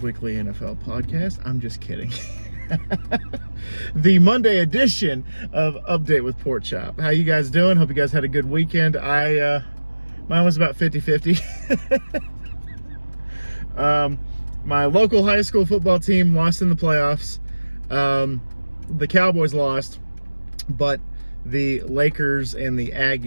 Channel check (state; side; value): inverted; both; correlation -1.00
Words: Weekly NFL Podcast. I'm just kidding. The Monday edition of Update with Pork Chop. How you guys doing? Hope you guys had a good weekend. Mine was about 50-50. My local high school football team lost in the playoffs. The Cowboys lost, but the Lakers and the